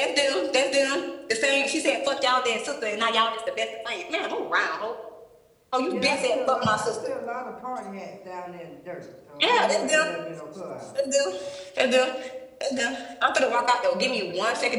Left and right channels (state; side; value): identical; both; correlation 1.00